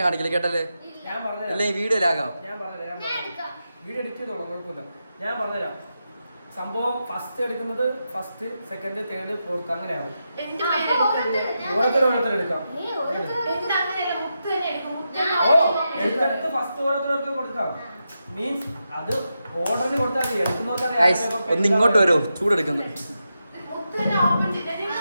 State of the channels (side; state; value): both; inverted; correlation -0.88